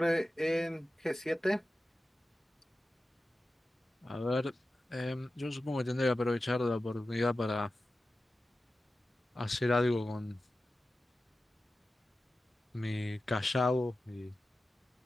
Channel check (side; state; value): both; normal; correlation 0.94